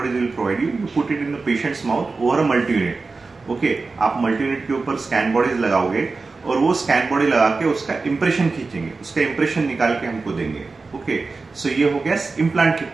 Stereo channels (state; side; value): quieter; left; 4.0 dB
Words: bodies will provide you. You put it in the patient's mouth over a multi-unit. Okay, आप multi-unit के ऊपर scan bodies लगाओगे और वो scan body लगा के उसका impression खींचेंगे, उसका इंप्रेशन निकाल के हमको देंगे. ओके, सो ये हो गया इम्प्लांट की